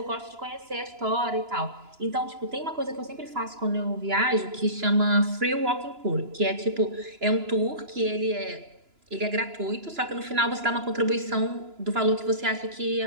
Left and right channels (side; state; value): left; late; 2.9 ms